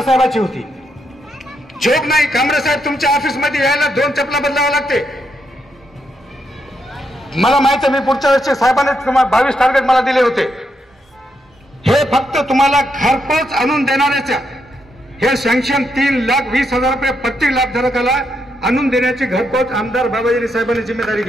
साहेबांची होती। जोक नाही, कांबळे साहेब तुमच्या ऑफिसमध्ये यायला 2 चपला बदलावं लागते। मला माहित आहे, मी पुढच्या वर्षी साहेबांनी 22 टार्गेट मला दिले होते। हे फक्त तुम्हाला घरपोच आणून देणाऱ्याच्या हे सँक्शन 3,20,000 रुपये प्रति लाभधारकाला आणून देण्याची घरपोच आमदार बाबाजानी साहेबांनी जिम्मेदारी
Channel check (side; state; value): both; normal; correlation 0.80